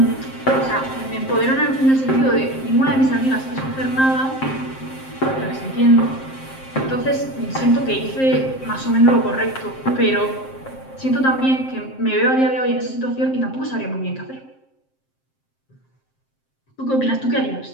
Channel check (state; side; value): late; right; 7.6 ms